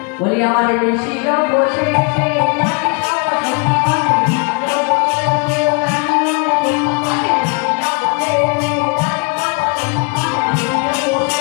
বলি আমার ঋষি বসে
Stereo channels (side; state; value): right; quieter; 33.9 dB